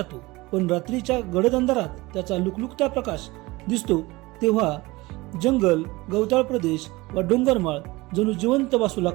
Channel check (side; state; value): left; quieter; 21.5 dB